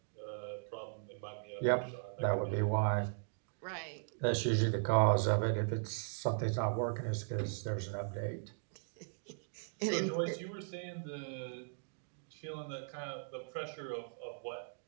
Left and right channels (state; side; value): silent; left; digital silence